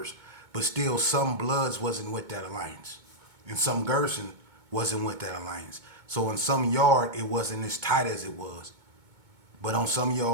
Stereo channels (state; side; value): late; left; 2.2 ms